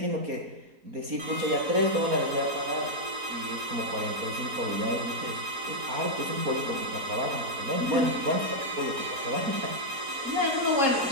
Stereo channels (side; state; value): left; late; 4.2 ms